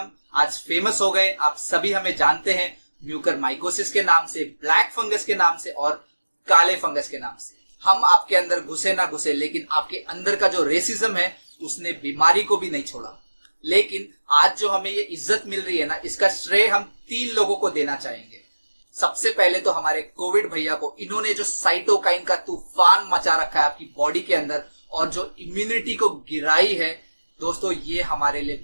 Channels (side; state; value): both; inverted; correlation -1.00